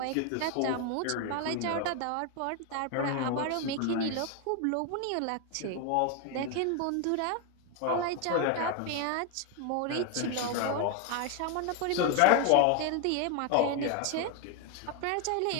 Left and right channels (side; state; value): both; different; correlation 0.01